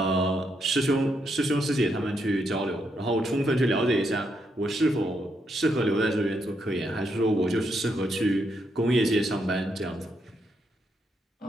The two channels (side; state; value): both; normal; correlation 0.78